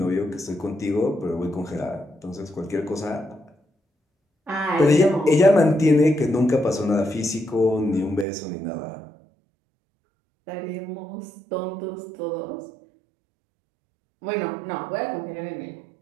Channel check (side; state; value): left; drops out; at 8.2 s